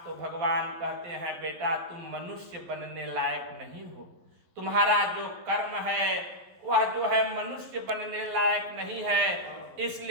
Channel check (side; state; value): left; late; 12 ms